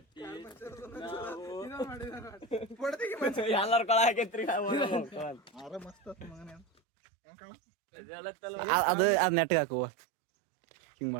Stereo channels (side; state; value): left; drops out; at 6.7 s